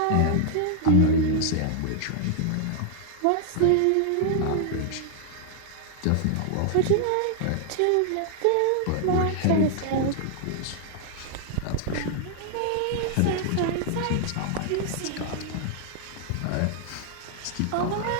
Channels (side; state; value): both; different; correlation 0.00